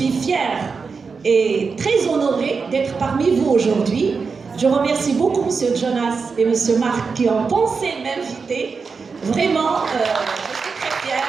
fière et très honorée d'être parmi vous aujourd'hui. Je remercie beaucoup M. Jonas et M. Marc qui ont pensé m'inviter. Vraiment, je suis très fière.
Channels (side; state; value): left; quieter; 5.0 dB